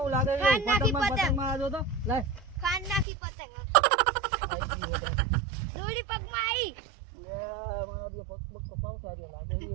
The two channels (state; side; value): drops out; left; at 3.1 s